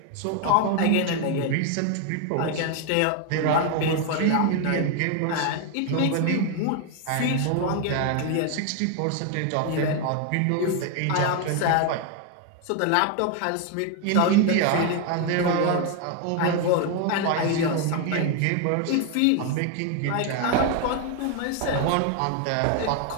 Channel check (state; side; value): different; both; correlation 0.01